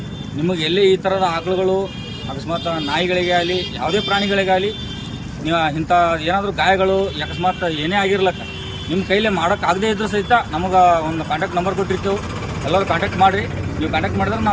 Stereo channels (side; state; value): both; identical; correlation 1.00